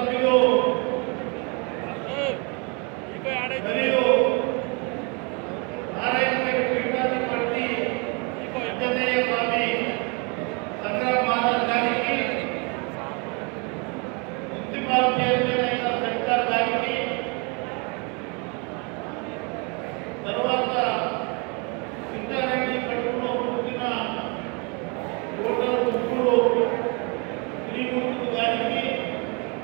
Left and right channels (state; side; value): quieter; left; 32.4 dB